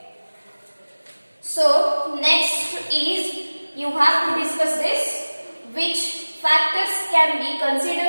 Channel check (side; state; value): both; inverted; correlation -1.00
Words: So next is you have to discuss this, which factors can be